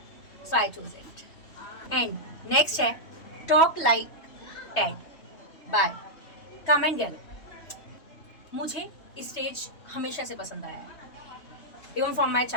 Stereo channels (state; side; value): late; right; 3.2 ms